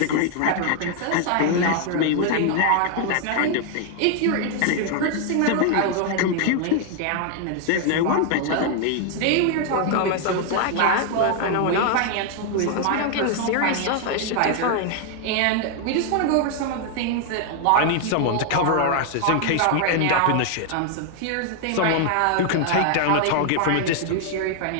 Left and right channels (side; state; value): both; different; correlation 0.00